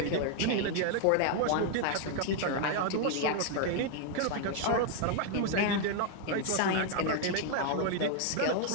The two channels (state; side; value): different; both; correlation 0.00